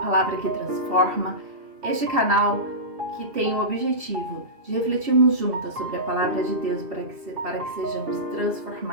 que Transforma, este canal que tem o objetivo de refletirmos juntas sobre a Palavra de Deus para que sejamos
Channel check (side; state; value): left; late; 2.7 ms